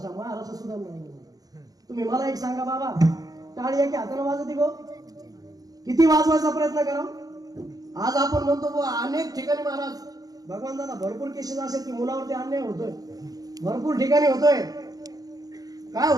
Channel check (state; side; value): late; left; 0.18 ms